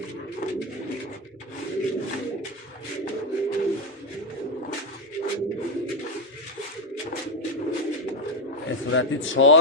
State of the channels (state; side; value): normal; both; correlation 0.07